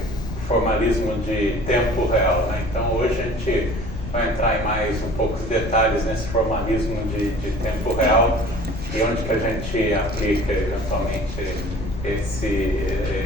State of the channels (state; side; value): noise; left; rumble, 8 dB below the sound